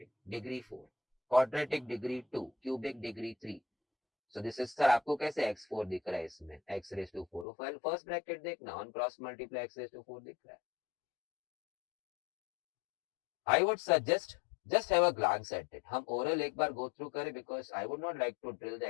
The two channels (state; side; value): drops out; right; at 7.5 s